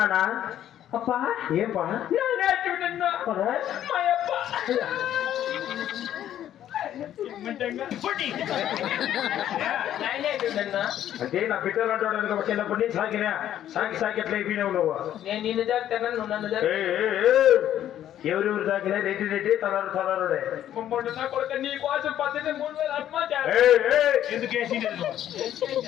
అప్పా ఏం పా అంటే నా బిడ్డలు అంటాడు చిన్నప్పటి నుంచి సాకి ఎట్లా అయిపోయినావు నువ్వు? నేను నిన్ను జాగ్రత్త నువ్వు నన్ను ఎవరెవరు తాకినా రెడ్డి తలారుడే నీ కోసం 3,000 ఎందుకు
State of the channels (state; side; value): quieter; right; 11.4 dB